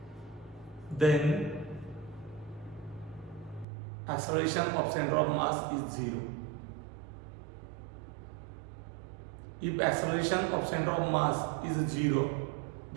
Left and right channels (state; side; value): drops out; left; at 3.7 s